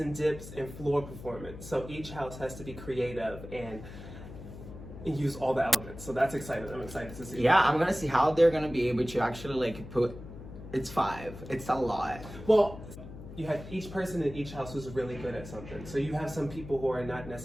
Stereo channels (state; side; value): noise; left; hum, 13 dB below the sound